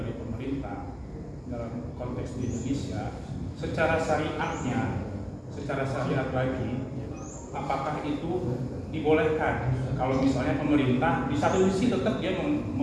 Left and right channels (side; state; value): both; identical; correlation 1.00